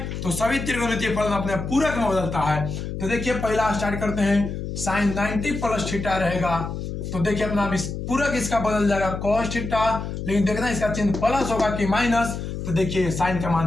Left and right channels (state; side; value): noise; left; hum, 6 dB below the sound